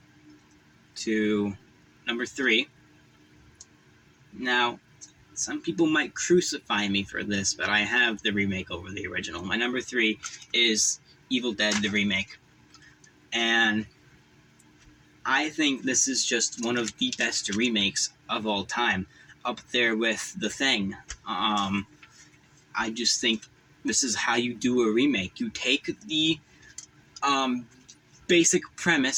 to number 3. Now, some people might crucify me for this, but I have the remake over the original. My number 3 is Evil Dead, the remake. And I think this is just one of the best remakes of all time, up there with The Thing. I just think this is how you do a remake. You take the basic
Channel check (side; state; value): both; identical; correlation 1.00